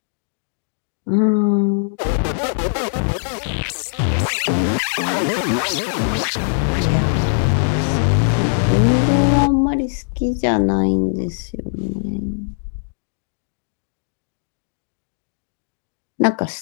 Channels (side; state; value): right; silent; digital silence